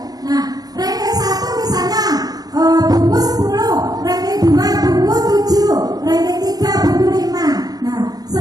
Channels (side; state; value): left; late; 0.19 ms